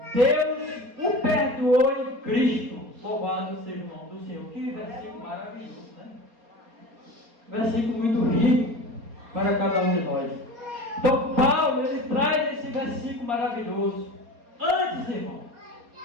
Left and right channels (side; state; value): left; late; 4.2 ms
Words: Deus o perdoou em Cristo. Louvado seja o nome do Senhor. Que versículo maravilhoso, Versículo muito rico para cada um de nós. Então Paulo, ele traz esse versículo maravilhoso. Antes, irmão,